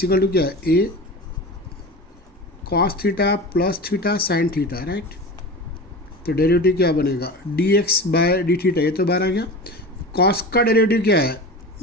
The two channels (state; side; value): normal; both; correlation 0.31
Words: equal to क्या है a cos theta plus theta sin theta right. तो derivative क्या बनेगा d x by D theta. ये तो बाहर आ गया. कॉस का डेरिवेटिव क्या है